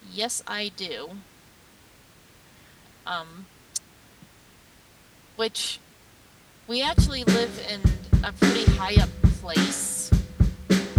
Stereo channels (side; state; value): both; identical; correlation 1.00